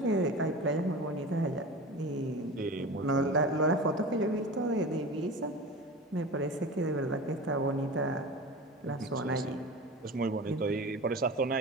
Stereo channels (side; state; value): both; normal; correlation 0.32